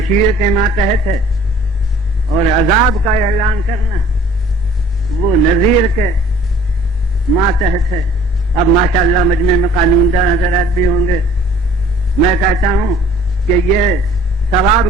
کے ماتحت ہے، اور عذاب کا اعلان کرنا وہ نذیر کے ماتحت ہے۔ اب ماشاءاللہ مجمع میں قانون دان حضرات بھی ہوں گے، میں کہتا ہوں کہ یہ ثواب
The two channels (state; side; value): normal; both; correlation 0.53